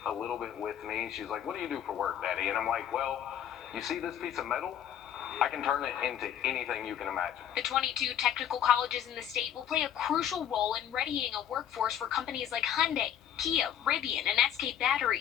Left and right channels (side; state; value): right; quieter; 9.9 dB